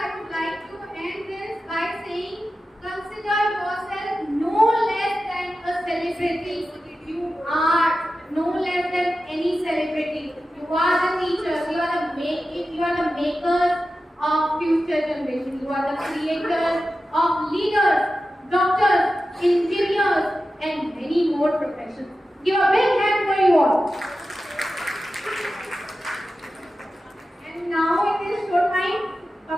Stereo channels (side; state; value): both; normal; correlation 0.93